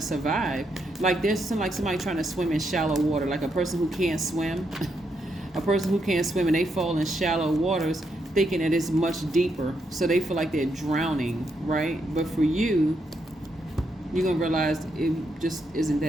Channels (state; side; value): normal; both; correlation 0.80